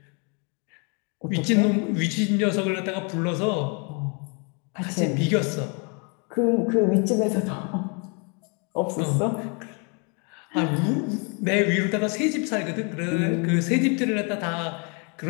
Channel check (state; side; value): quieter; right; 35.2 dB